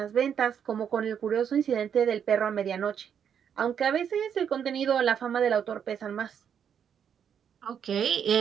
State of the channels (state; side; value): quieter; left; 8.1 dB